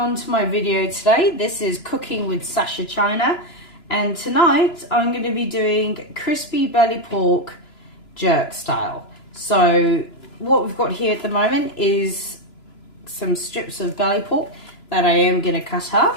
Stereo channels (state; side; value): late; right; 2.9 ms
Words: my video today. This is Cooking with Sasha China, and tonight I'm going to be doing crispy belly pork jerk style. So what we've got here at the moment is some strips of belly pork that I am going to cut